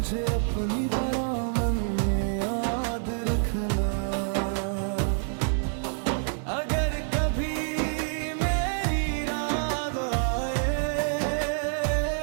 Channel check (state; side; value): silent; left; 60 dB below the other